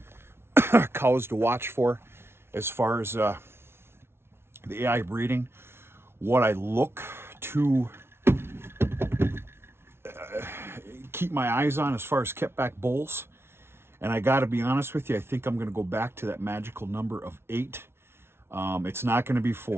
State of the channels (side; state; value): left; late; 0.12 ms